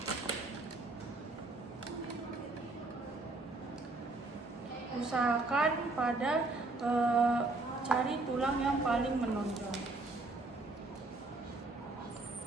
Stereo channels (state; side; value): quieter; left; 3.2 dB